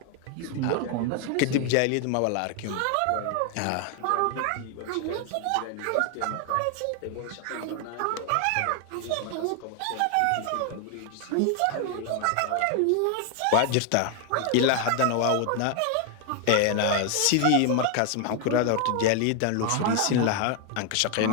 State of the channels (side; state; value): both; different; correlation 0.00